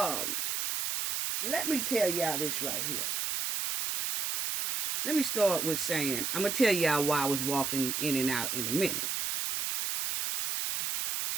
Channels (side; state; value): right; noise; hiss, 1 dB below the sound